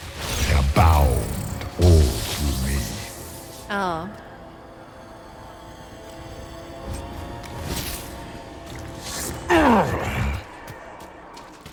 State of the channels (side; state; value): both; identical; correlation 1.00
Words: They are bound all through me. Ah.